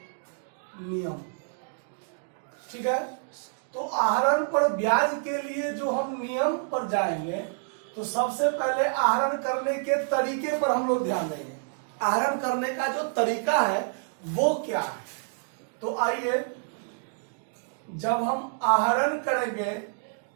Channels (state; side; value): silent; left; digital silence